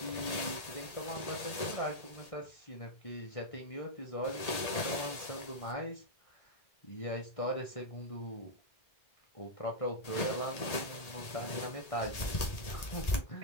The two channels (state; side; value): late; right; 1.8 ms